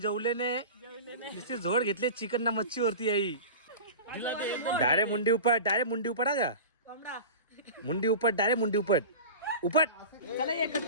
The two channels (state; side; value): inverted; both; correlation -0.32